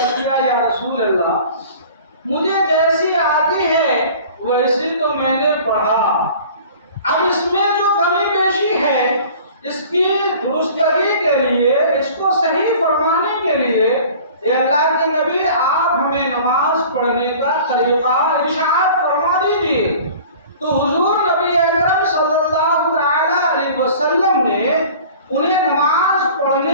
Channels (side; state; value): both; inverted; correlation -0.45